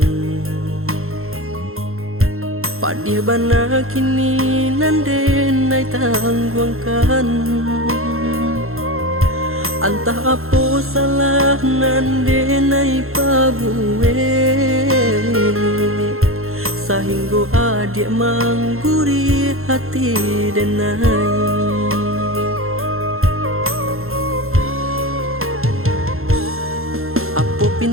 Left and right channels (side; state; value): left; late; 0.62 ms